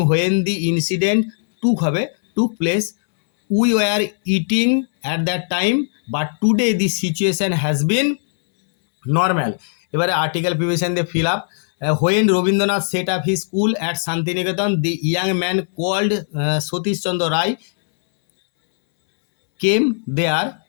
when the incident took place, we were eating at that time but today the situation has been normal. এবারে আর্টিকেল প্রিভিশন দিয়ে fill up. When Rabindranath set up he school at Shantiniketan the young man called Satish Chandra Ray came there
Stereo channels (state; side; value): silent; right; 67 dB below the other